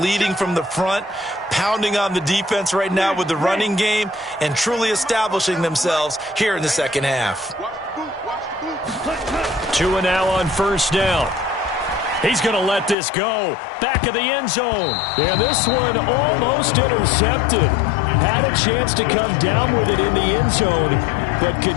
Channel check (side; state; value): right; drops out; at 13.0 s